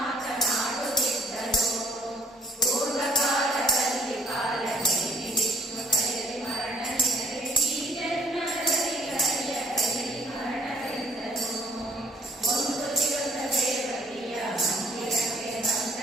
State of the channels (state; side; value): normal; both; correlation 0.60